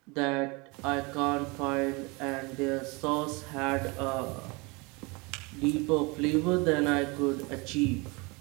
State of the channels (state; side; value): quieter; left; 27.7 dB